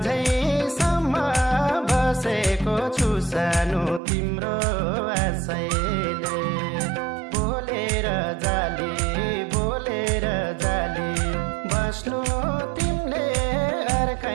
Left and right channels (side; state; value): left; drops out; at 4.0 s